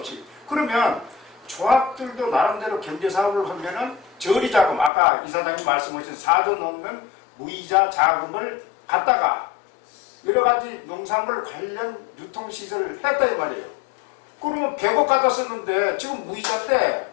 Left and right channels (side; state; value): right; drops out; at 4.9 s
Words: 그러면 조합들도 나름대로 경제사업을 하면은 저리자금, 아까 이사장님 말씀하신 4조 넘는 무이자 자금을 갖다가 여러 가지 농산물 관련 유통시설을 했다 이 말이에요. 그러면 100억 갖다 썼는데 지금